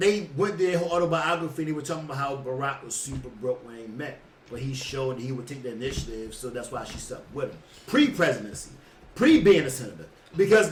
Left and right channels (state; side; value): identical; both; correlation 1.00